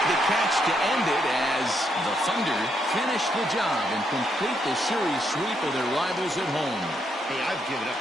the catch to end it as the Thunder finish the job and complete the series sweep of their rivals at home. Hey, I've given up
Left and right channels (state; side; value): normal; both; correlation 0.77